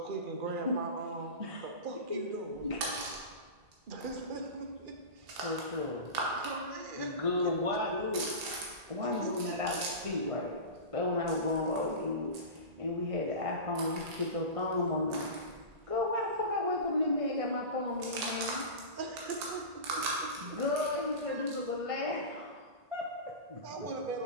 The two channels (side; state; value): left; late; 1.8 ms